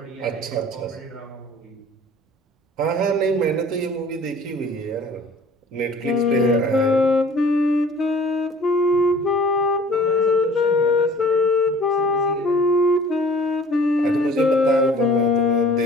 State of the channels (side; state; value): both; normal; correlation 0.48